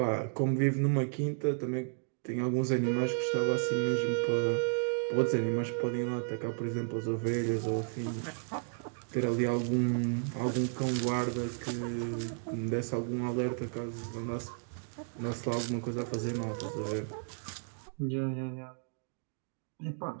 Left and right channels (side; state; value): left; silent; digital silence